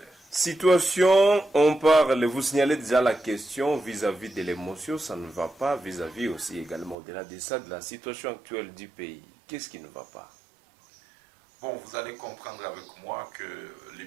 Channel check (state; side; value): drops out; left; at 7.0 s